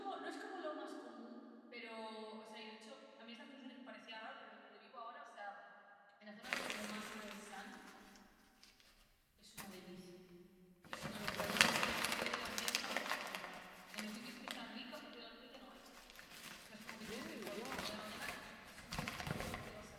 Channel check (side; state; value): both; identical; correlation 1.00